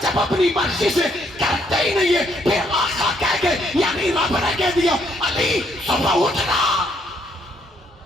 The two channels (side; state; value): both; normal; correlation 0.71